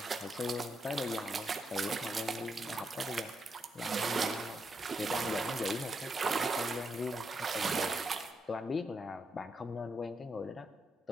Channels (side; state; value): both; normal; correlation 0.81